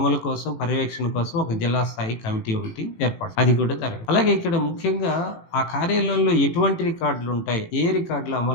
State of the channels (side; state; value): right; late; 18 ms